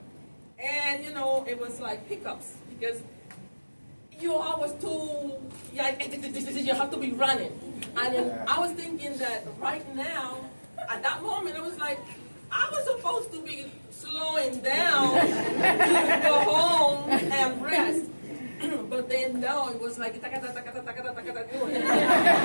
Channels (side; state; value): both; inverted; correlation -1.00